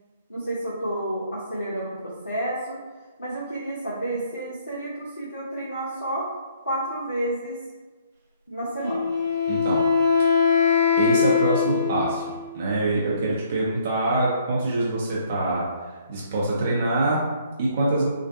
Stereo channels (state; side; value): inverted; both; correlation -0.64